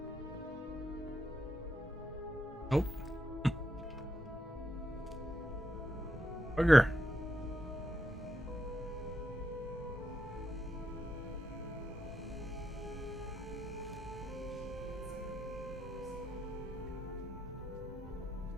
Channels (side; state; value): both; normal; correlation 0.82